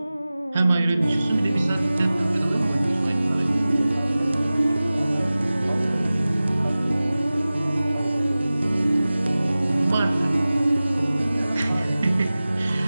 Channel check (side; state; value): both; inverted; correlation -0.97